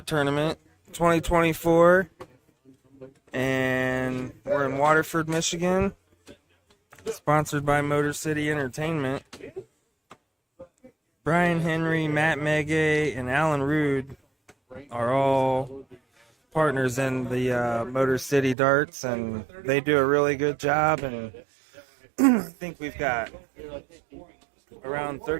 Tournament 2024, and we're in Waterford, Michigan, sponsored by Motor City Entertainment. Brian Henry, Matt Megay, and Alan Rude are all partners in the Motor City Darts, and they do a really good job, and I think we've got around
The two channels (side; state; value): left; drops out; at 18.6 s